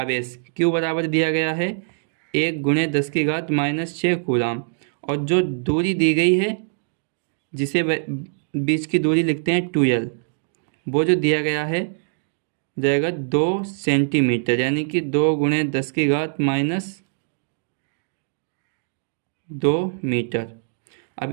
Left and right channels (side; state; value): left; silent; digital silence